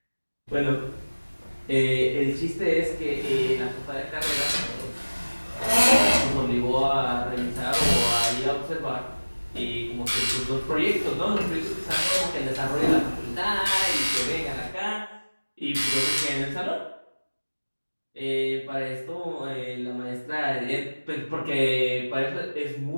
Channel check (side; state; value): both; inverted; correlation -1.00